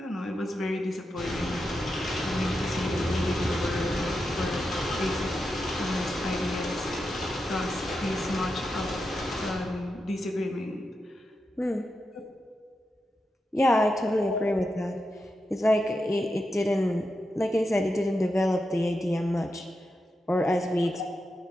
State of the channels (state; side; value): normal; both; correlation 0.88